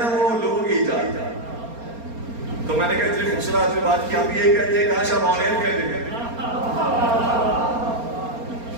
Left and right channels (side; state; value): left; late; 4.3 ms